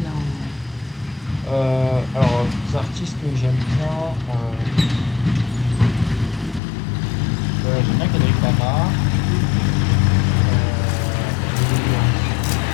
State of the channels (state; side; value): drops out; right; at 6.6 s